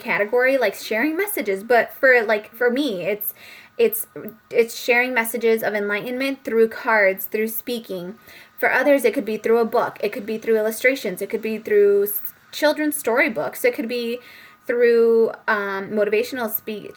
like sharing messages. But for me, it's sharing messages of enlightenment through cards, through speaking. For others, it could be through a book. It could be through illustrations. It could be through children's storybooks. It could be through motivational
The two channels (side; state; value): both; identical; correlation 1.00